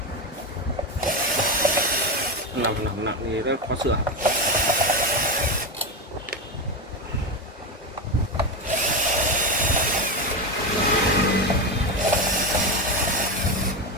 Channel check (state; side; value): normal; both; correlation 0.15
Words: Nặng thì rất khó sửa.